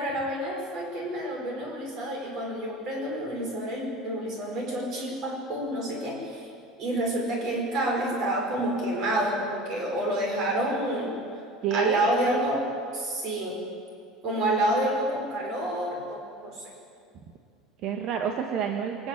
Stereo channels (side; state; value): both; normal; correlation 0.37